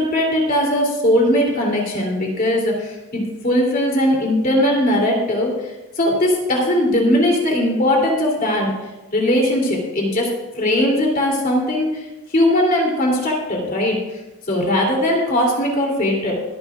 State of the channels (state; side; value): normal; both; correlation 0.40